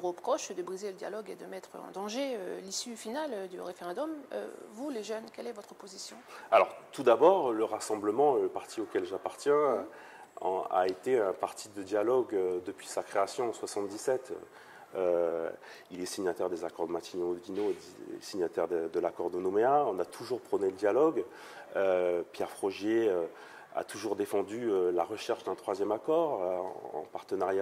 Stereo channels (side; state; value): both; identical; correlation 1.00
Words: reproche de briser le dialogue et de mettre en danger l'issue finale du référendum. Vous, les jeunes, quelle est votre position? Alors, tout d'abord, le Rassemblement, le parti auquel j'appartiens, a été un parti de dialogue depuis sa création en 1977. Il est signataire des accords de Matignon-Oudinot, signataire de l'accord de Nouméa. On a toujours prôné le dialogue. Pierre Frogier a toujours défendu la recherche d'un troisième accord en